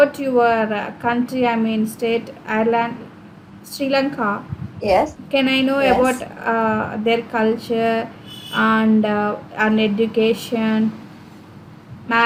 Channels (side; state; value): both; identical; correlation 1.00